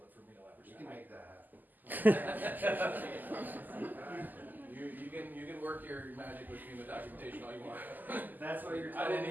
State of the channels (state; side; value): late; left; 0.085 ms